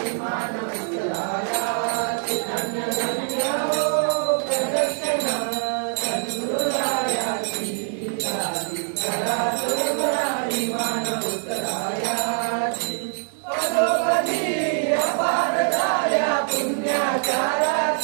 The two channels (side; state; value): left; silent; 57 dB below the other